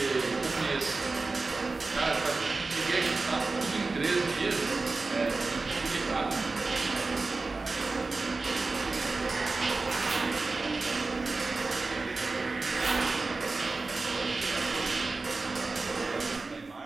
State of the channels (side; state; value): left; quieter; 3.7 dB